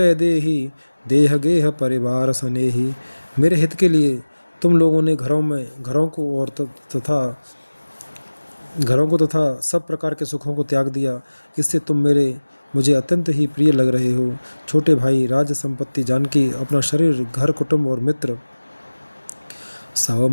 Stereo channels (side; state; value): both; inverted; correlation -1.00